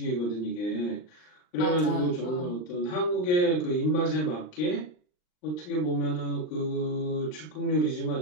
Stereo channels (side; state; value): right; late; 39 ms